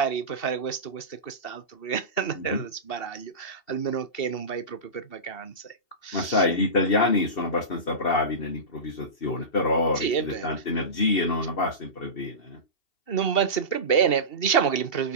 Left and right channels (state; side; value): late; right; 2.7 ms